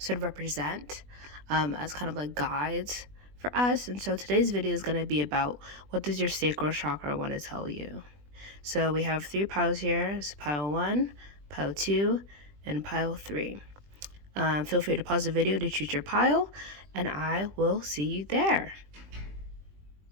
of represent as kind of like guides for us. And so today's video is going to be about what does your sacral chakra want to tell you. So we have 3 piles here. It's pile 1, pile 2, and pile 3. Feel free to pause the video to choose your pile, and I will see you there.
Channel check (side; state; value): left; late; 20 ms